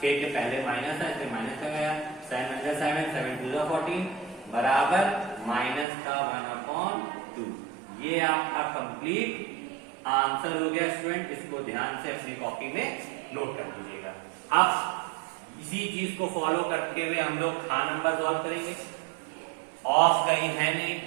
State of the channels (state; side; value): drops out; left; at 5.9 s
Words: 6 के पहले माइनस है इसलिए माइनस का गया, 7 7 2 14 बराबर -1/2। ये आपका कंप्लीट आंसर हो गया स्टूडेंट। इसको ध्यान से अपनी कॉपी में नोट कर लीजिएगा। अब इसी चीज को फॉलो करते हुए हम लोग खा नंबर सॉल्व करेंगे। ऑफ कहीं है नहीं,